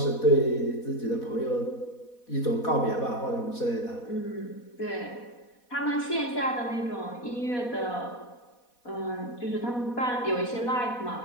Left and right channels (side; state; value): right; late; 4.1 ms